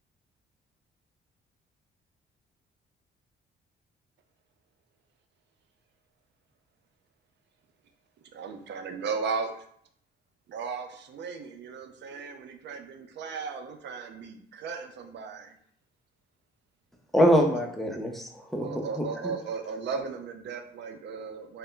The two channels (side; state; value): both; normal; correlation 0.52